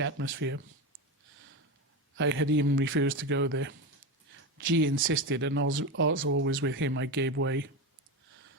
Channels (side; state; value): both; normal; correlation 0.18